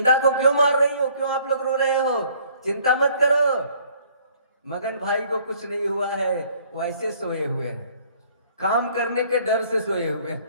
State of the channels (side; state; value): both; inverted; correlation -0.59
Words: को क्यों मार रही हो? क्यों आप लोग रो रहे हो? चिंता मत करो, मगन भाई को कुछ नहीं हुआ है, वो ऐसे सोए हुए हैं, काम करने के डर से सोए हुए